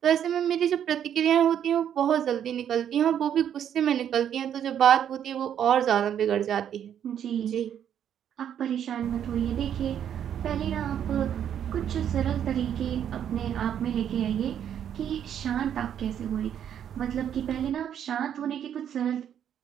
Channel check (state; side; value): quieter; left; 9.4 dB